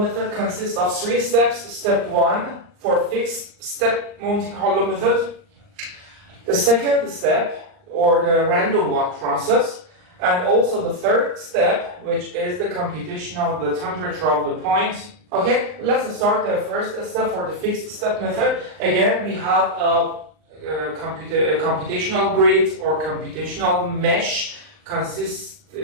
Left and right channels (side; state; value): left; late; 39 ms